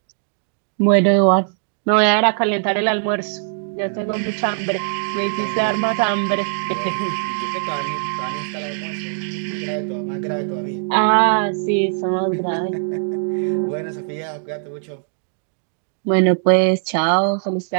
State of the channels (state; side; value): silent; left; digital silence